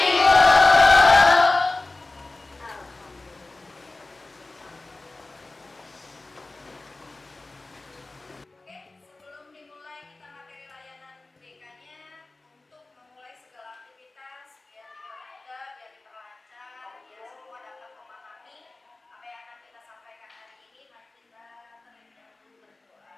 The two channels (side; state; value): right; quieter; 3.2 dB